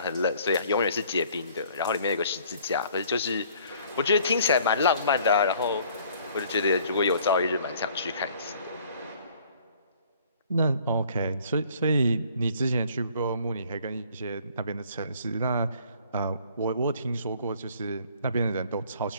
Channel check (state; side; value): inverted; both; correlation -0.57